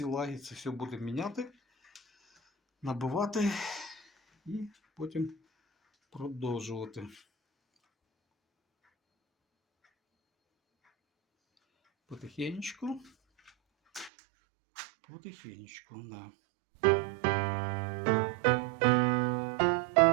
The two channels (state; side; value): drops out; left; at 14.1 s